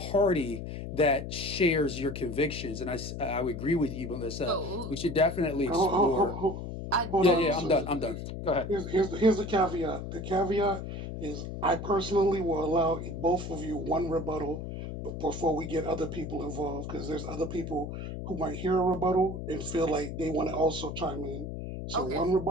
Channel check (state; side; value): noise; left; hum, 7 dB below the sound